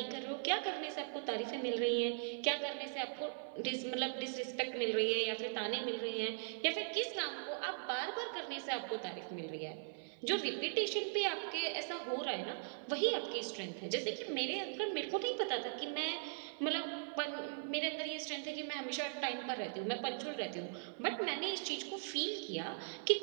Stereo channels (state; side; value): silent; left; 51 dB below the other